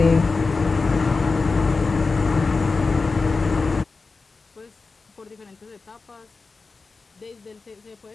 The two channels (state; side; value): quieter; right; 4.1 dB